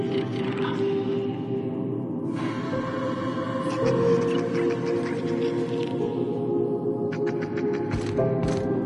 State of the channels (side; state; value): both; identical; correlation 1.00